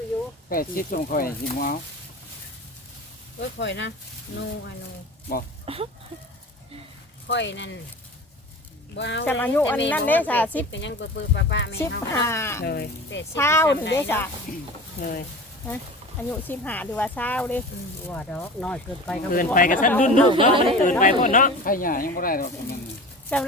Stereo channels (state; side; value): normal; both; correlation 0.35